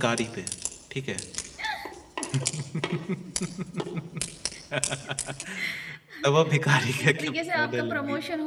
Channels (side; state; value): both; identical; correlation 1.00